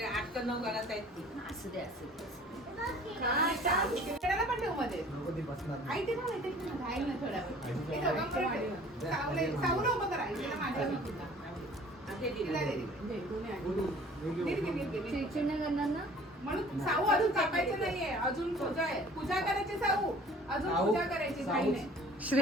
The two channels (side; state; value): both; normal; correlation 0.49